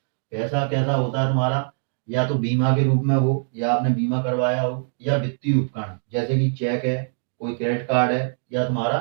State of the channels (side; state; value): left; silent; digital silence